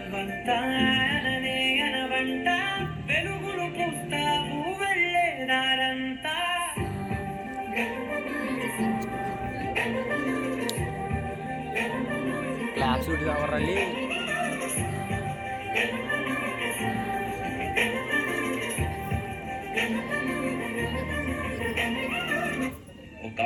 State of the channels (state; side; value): identical; both; correlation 1.00